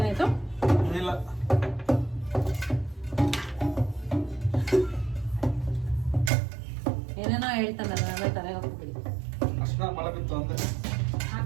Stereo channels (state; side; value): drops out; left; at 6.3 s